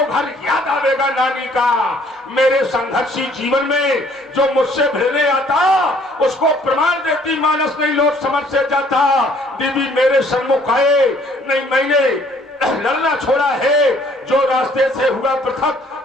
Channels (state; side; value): normal; both; correlation 0.60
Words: घर याद आवेगा नानी का। मेरे संघर्षी जीवन में जो मुझसे भिड़ने आता उसको प्रमाण देती मानस नहीं लोट समझ से जाता। देवी मेरे सन्मुख आए नहीं, मैंने लड़ना छोड़ा है। जो रास्ते से हुआ